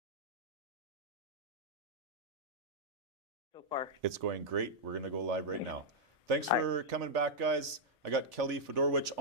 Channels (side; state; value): left; late; 1.8 ms